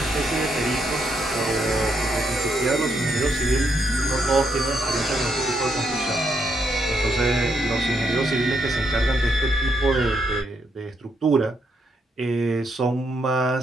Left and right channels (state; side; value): normal; both; correlation 0.77